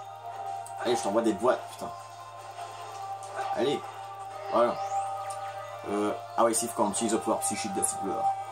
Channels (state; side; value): identical; both; correlation 1.00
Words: Allez, je t'envoie des boîtes, putain. Allez. Voilà. Ah ouais, Sif quand on utilise le pouvoir psychique de Silver.